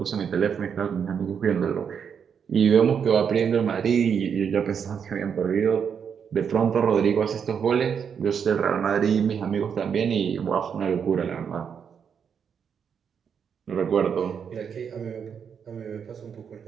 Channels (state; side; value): quieter; left; 7.2 dB